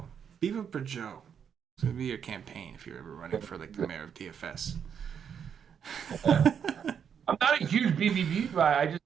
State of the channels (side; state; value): left; quieter; 7.7 dB